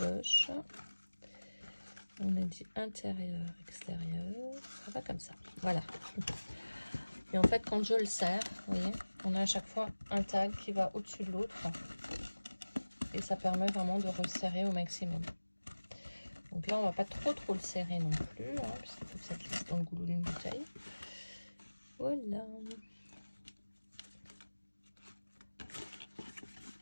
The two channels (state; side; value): inverted; both; correlation -1.00